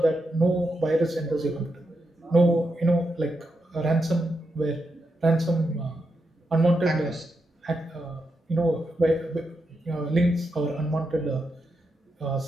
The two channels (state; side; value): normal; both; correlation 0.84